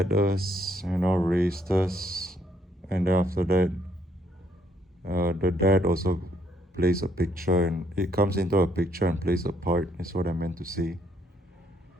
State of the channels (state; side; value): normal; both; correlation 0.70